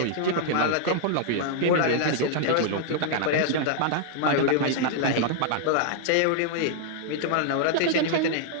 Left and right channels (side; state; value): both; different; correlation -0.01